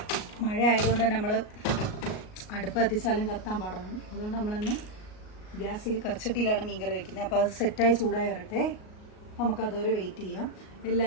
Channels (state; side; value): late; right; 38 ms